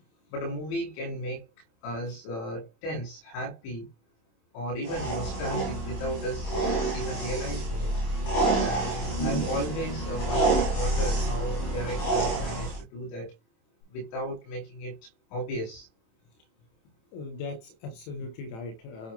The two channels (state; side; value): late; right; 27 ms